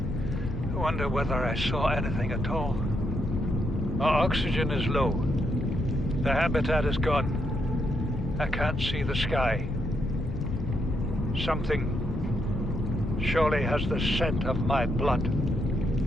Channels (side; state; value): left; noise; rumble, 5 dB below the sound